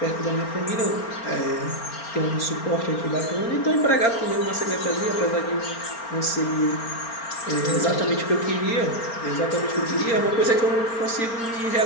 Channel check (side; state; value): right; late; 4.4 ms